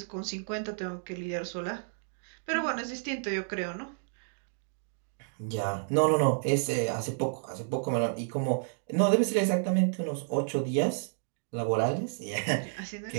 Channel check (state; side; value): silent; left; digital silence